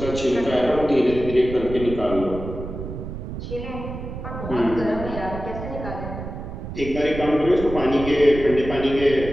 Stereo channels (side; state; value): right; noise; rumble, 8 dB below the sound